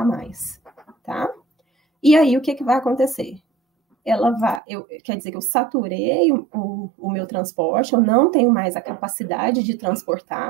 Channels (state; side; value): drops out; left; at 4.6 s